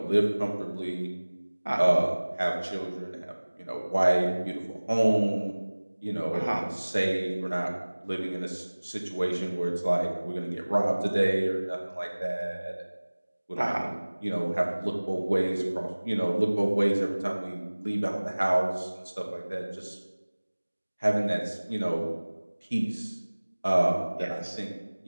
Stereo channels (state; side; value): inverted; both; correlation -1.00